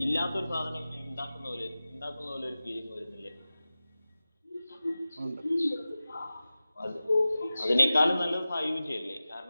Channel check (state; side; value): inverted; both; correlation -0.96